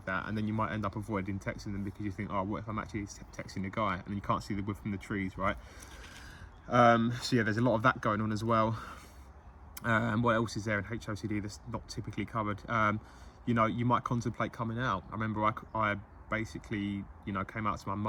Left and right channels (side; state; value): both; identical; correlation 1.00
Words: that, and then you might end up avoiding texting them because you think, oh, what if I'm actually texting a guy? And you can't see the wood from the trees, right? So yeah, there's a lot of that going on as well. What else is there in HOCD that's not typically covered? You know, you might contemplate coming out. I remember I basically, you know, came out to my